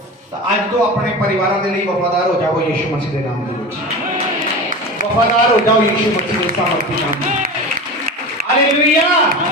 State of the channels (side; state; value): both; normal; correlation 0.30